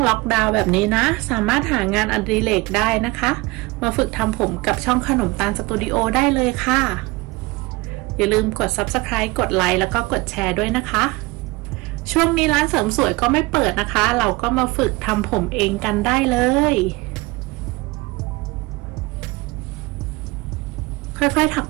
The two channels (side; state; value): left; quieter; 22.8 dB